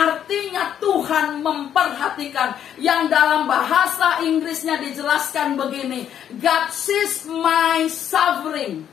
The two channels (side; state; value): right; quieter; 9.6 dB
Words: Tuhan memperhatikan. Yang dalam bahasa Inggrisnya dijelaskan begini, God sees my suffering.